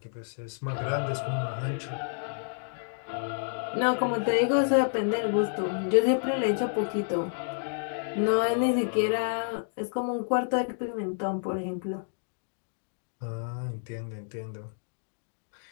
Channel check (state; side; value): silent; right; digital silence